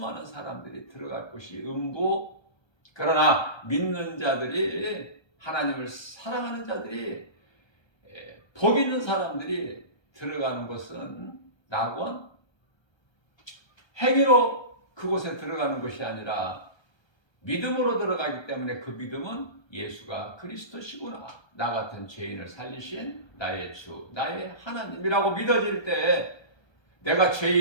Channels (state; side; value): late; right; 1.3 ms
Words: 사람들이 들어갈 곳이 음부. 그러나 믿는 자들이, 하나님을 사랑하는 자들이, 복 있는 사람들이 들어가는 곳은 낙원, 행위로 그곳에 들어가는 것이 아니라 믿음으로 들어가기 때문에 그 믿음은 예수가 그리스도시구나, 나 같은 죄인을 살리신 나의 주, 나의 하나님이라고 믿어질 때 내가